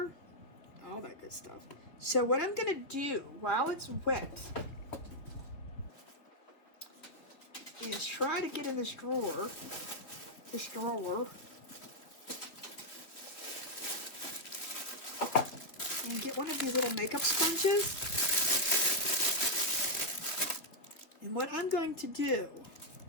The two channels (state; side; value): late; right; 3.3 ms